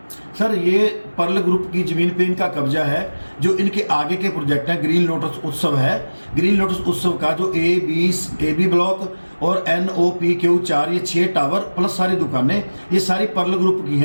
सर, ये पर्ल ग्रुप की जमीन पे इनका कब्जा है। जो इनके आगे के प्रोजेक्ट हैं, ग्रीन लोटस उत्सव है, ग्रीन लोटस उत्सव का जो ए बी ब्लॉक और NOPQ4 ये 6 टावर प्लस सारी दुकानें, ये सारी पर्ल ग्रुप की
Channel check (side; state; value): both; inverted; correlation -1.00